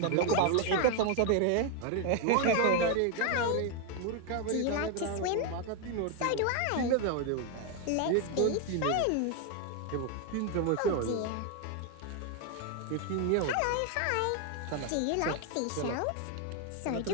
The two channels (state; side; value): different; both; correlation 0.01